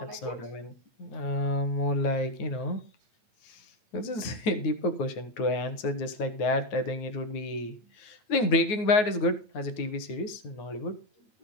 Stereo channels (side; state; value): right; late; 9.4 ms